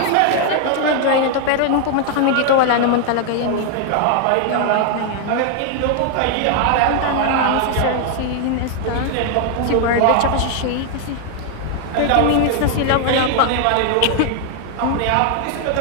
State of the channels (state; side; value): different; both; correlation 0.00